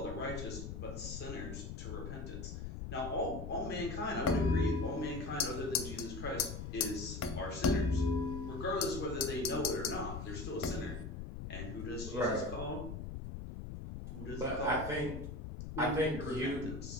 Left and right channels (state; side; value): noise; left; rumble, 7 dB below the sound